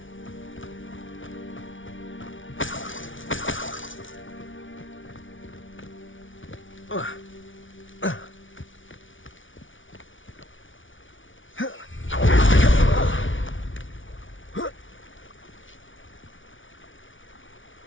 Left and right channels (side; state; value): right; late; 0.56 ms